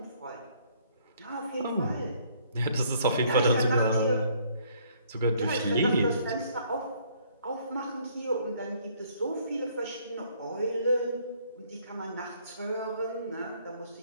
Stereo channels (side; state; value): both; inverted; correlation -0.63